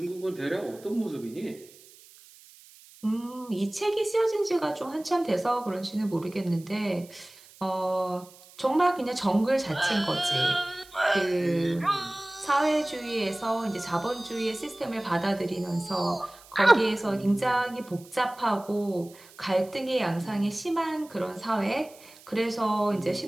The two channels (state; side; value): noise; right; hiss, 23 dB below the sound